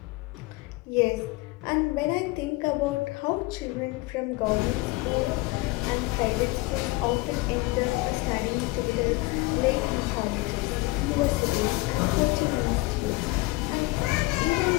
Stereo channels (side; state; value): right; quieter; 22.4 dB